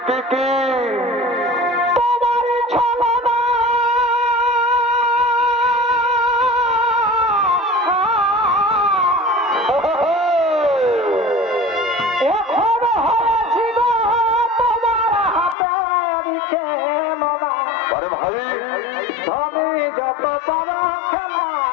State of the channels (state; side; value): drops out; right; at 15.6 s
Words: কি আরে ভাই যত পারো